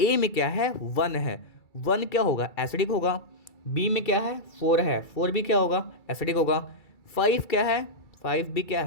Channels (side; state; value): right; late; 2.3 ms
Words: में क्या है, 1 है, 1 क्या होगा, एसिडिक होगा। बी में क्या है, 4 है, 4 भी क्या होगा, एसिडिक होगा। 5 क्या है, 5 भी क्या